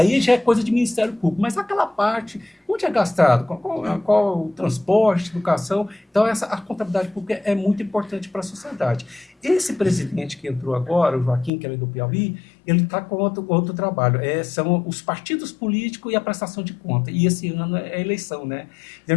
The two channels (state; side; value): drops out; right; at 11.5 s